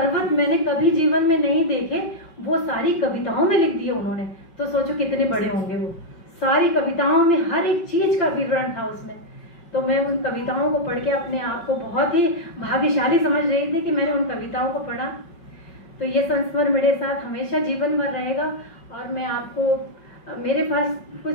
मैंने कभी जीवन में नहीं देखे वो सारी कविताओं में लिख दिए उन्होंने। तो सोचो कितने बड़े होंगे वो। सारी कविताओं में हर एक चीज़ का विवरण था उसमें। तो मैं उन कविताओं को पढ़ के अपने आप को बहुत ही भाग्यशाली समझ रही थी कि मैंने उन कविताओं को पढ़ा। तो ये संस्मरण मेरे साथ हमेशा जीवन भर रहेगा। और मैं आपको, मेरे पास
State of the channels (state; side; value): late; right; 5.3 ms